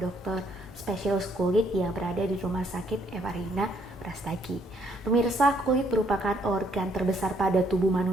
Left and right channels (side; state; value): both; normal; correlation 0.68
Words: spesialis kulit yang berada di Rumah Sakit Evarina Brastagi. Pemirsa, kulit merupakan organ terbesar pada tubuh